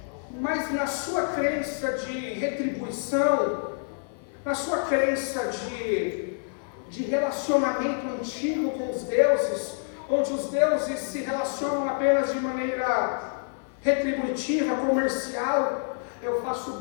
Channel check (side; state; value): right; silent; digital silence